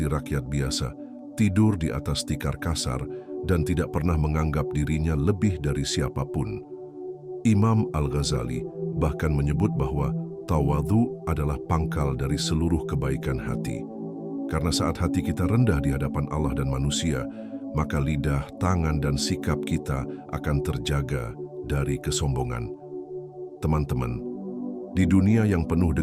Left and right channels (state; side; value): identical; both; correlation 1.00